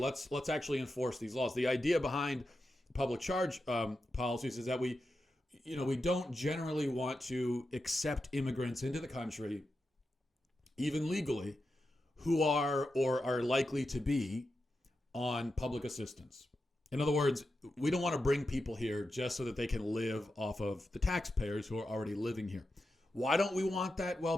actually enforce these laws. The idea behind public charge policies is that we don't generally want to accept immigrants into the country, even legally, who are or are likely to be on public assistance. In other words, we don't want to bring people here just so that they can live off of the taxpayers who are already living here. Why don't we want that? Well,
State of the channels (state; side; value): normal; both; correlation 0.89